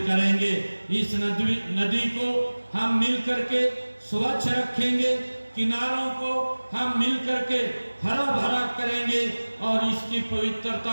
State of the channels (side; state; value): both; inverted; correlation -1.00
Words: करेंगे। इस नदी को हम मिलकर के स्वच्छ रखेंगे, किनारों को हम मिलकर के हरा भरा करेंगे और इसकी